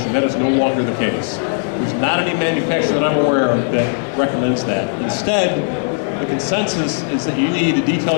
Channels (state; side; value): silent; right; 65 dB below the other